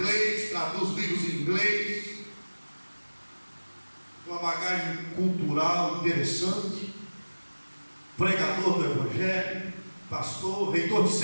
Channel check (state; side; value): inverted; both; correlation -1.00